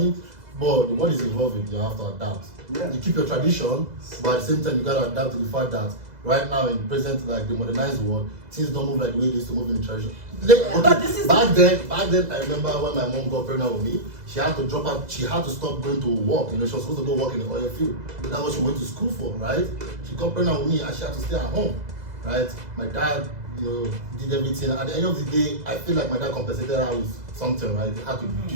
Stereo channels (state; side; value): late; left; 2.0 ms